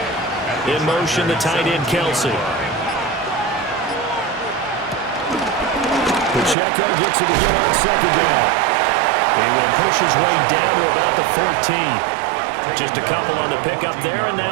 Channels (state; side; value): drops out; left; at 6.6 s